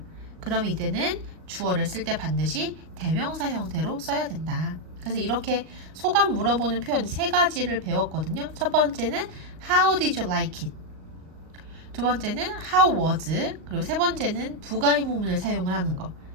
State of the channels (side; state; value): left; late; 38 ms